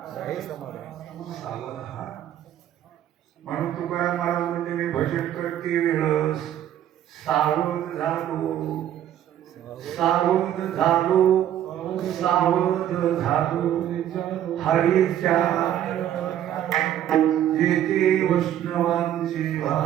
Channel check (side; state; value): left; quieter; 11.1 dB